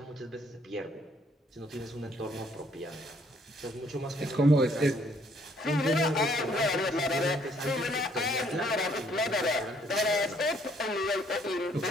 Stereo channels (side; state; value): both; normal; correlation 0.65